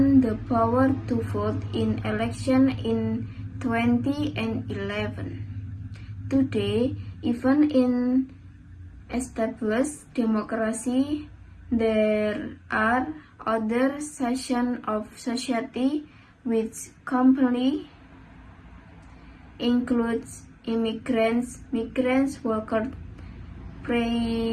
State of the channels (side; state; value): both; identical; correlation 1.00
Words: the power to vote in elections in 2011. Today, even in established democracy, there are other sections of society which completely includes immigrants, migrants, workers,